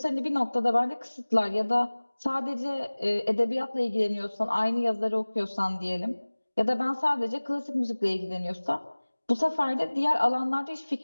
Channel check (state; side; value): inverted; both; correlation -1.00